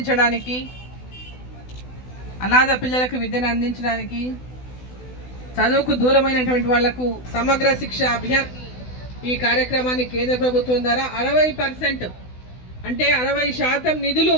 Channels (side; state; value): right; late; 16 ms